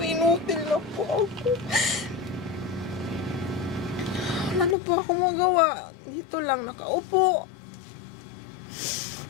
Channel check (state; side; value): drops out; right; at 4.8 s